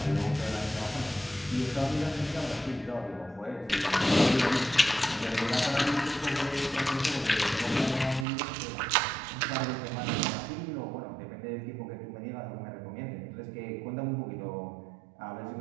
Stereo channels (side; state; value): left; drops out; at 8.2 s